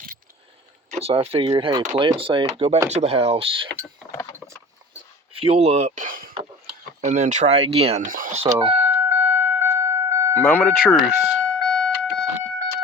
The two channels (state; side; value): normal; both; correlation 0.39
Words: So I figured, hey, play it safe, go back to the house, fuel up, and then try again. So, moment of truth.